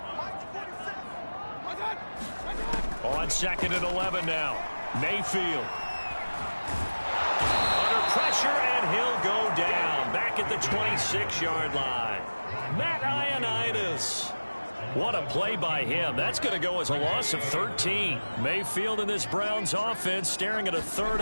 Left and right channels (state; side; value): inverted; both; correlation -1.00